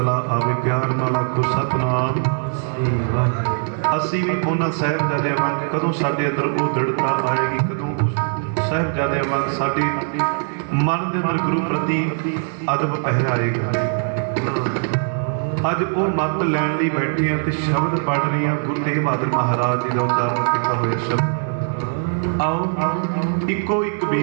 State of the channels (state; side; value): silent; left; digital silence